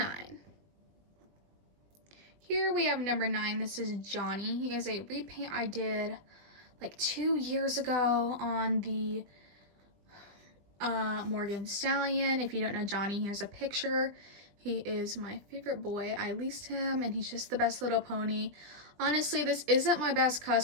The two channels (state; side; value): late; left; 20 ms